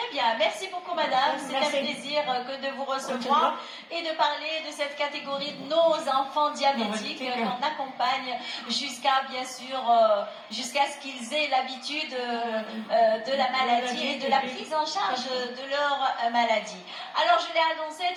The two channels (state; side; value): identical; both; correlation 1.00